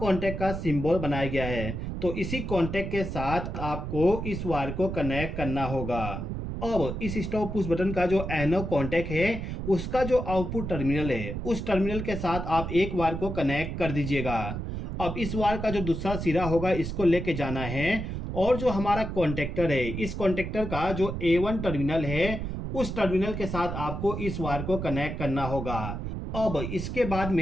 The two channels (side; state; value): right; noise; rumble, 5 dB below the sound